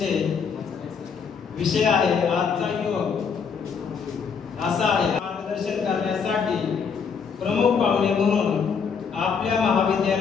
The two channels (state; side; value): quieter; right; 6.1 dB